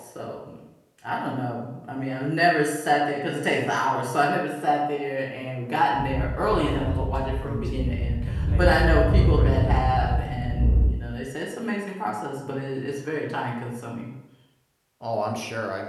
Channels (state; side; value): identical; both; correlation 1.00